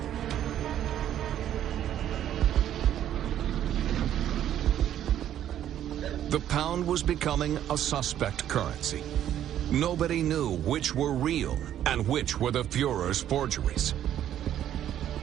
The pound was becoming a suspect currency. Nobody knew which were real and which were the Führer's forgeries.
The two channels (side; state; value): left; quieter; 11.1 dB